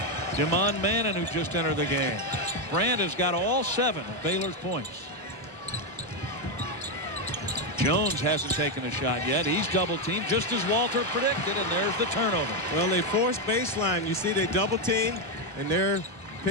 Damon Mannon, who just entered the game. Brand has got all 7 of Baylor's points. Jones hasn't taken a shot yet. He's double teamed just as Walter predicted, and there's the turnover. Well, they forced baseline. You see they double team, and they're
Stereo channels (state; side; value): normal; both; correlation 0.05